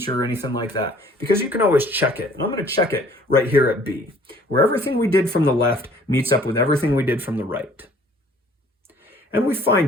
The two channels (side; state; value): both; normal; correlation 0.55